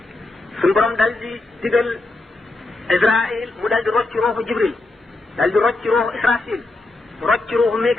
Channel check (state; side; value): quieter; right; 3.0 dB